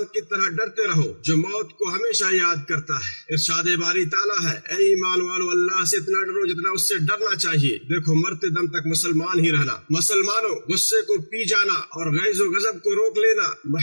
کی طرح ڈرتے رہو جو موت کو ہمیشہ یاد کرتا ہے۔ ارشاد باری تعالیٰ ہے، اے ایمان والو، اللہ سے اتنا ڈرو جتنا اس سے ڈرنا چاہیے۔ دیکھو، مرتے دم تک مسلمان ہی رہنا۔ مسلمانوں، غصے کو پی جانا اور غیظ و غضب کو روک لینا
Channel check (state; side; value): inverted; both; correlation -1.00